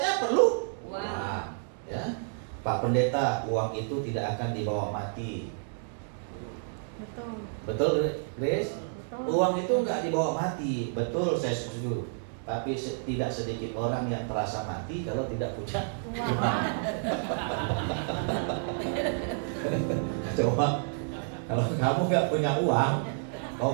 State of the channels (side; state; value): left; silent; digital silence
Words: perlu uang. Ya, Pak Pendeta, uang itu tidak akan dibawa mati. Betul. Betul, Grace? Betul. Uang itu nggak dibawa mati. Betul, saya setuju. Tapi tidak sedikit orang yang terasa mati kalau tidak punya uang. Coba, kalau kamu nggak punya uang,